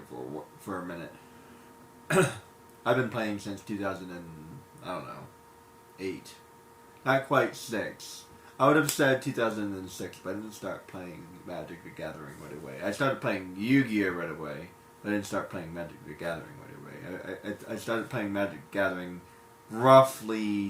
for a minute. I've been playing since 2008. Not quite 6. I would have said 2006, but I didn't start playing Magic the Gathering right away. I started playing Yu-Gi-Oh! Right away, but I didn't start playing Magic the Gathering right away. I started playing Magic the Gathering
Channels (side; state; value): both; identical; correlation 1.00